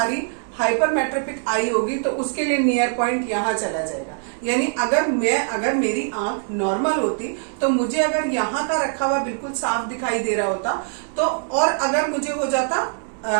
हाइपरमेट्रोपिक आई होगी तो उसके लिए नियर पॉइंट यहाँ चला जाएगा। यानी अगर मेरी आंख नॉर्मल होती तो मुझे अगर यहाँ का रखा हुआ बिल्कुल साफ दिखाई दे रहा होता तो, और अगर मुझे हो जाता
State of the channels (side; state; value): left; silent; 64 dB below the other